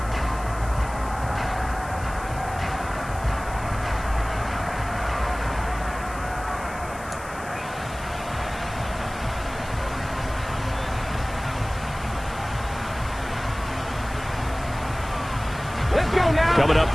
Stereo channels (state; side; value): noise; left; hiss, 18 dB below the sound